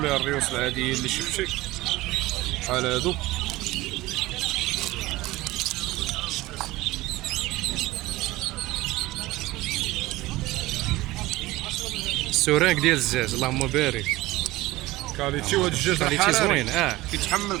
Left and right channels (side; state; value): left; quieter; 18.8 dB